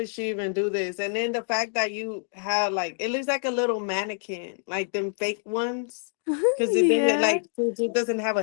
she even do this? And then the fact that you have like, it looks like a little mannequin, like them fake ones, because it didn't Yeah. like it doesn't have a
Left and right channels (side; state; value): right; silent; digital silence